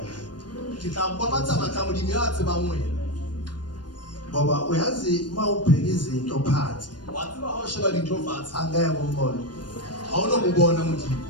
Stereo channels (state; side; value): late; right; 0.70 ms